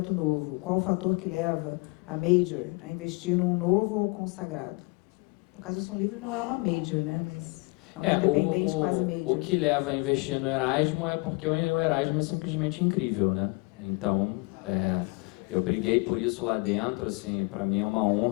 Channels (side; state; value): right; quieter; 28.5 dB